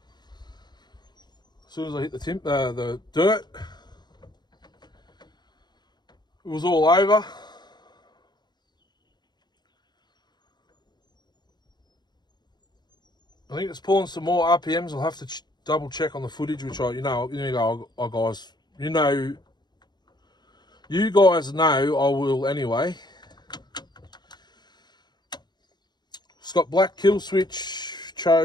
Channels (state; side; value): late; right; 0.21 ms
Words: As soon as I hit the dirt, it was all over. I think it's pulling some more RPMs. I'll have to double check on the footage, which you guys, you guys know I will anyway. It's got black kill switch,